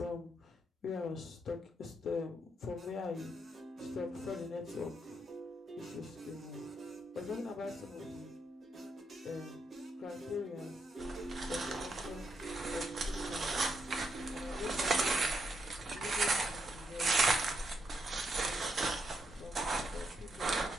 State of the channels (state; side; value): normal; both; correlation 0.79